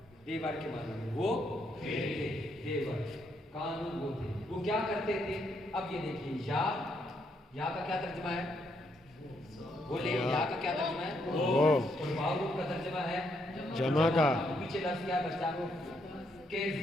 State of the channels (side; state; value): both; normal; correlation 0.75